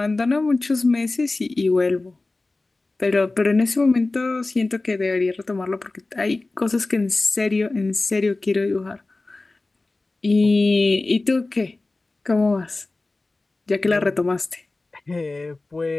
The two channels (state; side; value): quieter; right; 3.2 dB